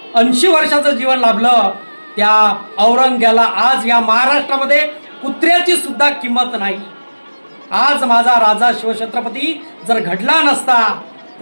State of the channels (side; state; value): both; inverted; correlation -1.00